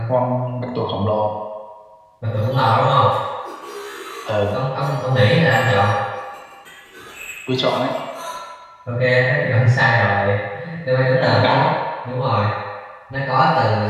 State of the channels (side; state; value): both; identical; correlation 1.00